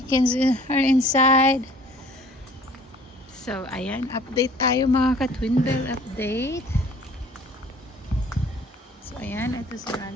are inside. So, ayan. Update tayo mga ka-Twin Bell. Update. So, ayan. Ito si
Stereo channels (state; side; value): normal; both; correlation 0.52